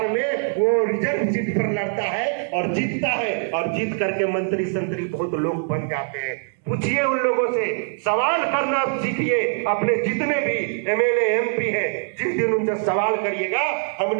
में वो रिजर्व सीट पर लड़ता है और जीतता है, और जीत करके मंत्री संतरी बहुत लोग बन जाते हैं। पूछिए उन लोगों से, सवाल करना सीखिए। अपने जितने भी एमएलए एमपी हैं, जिस दिन उनसे सवाल करिएगा,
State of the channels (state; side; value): silent; left; 58 dB below the other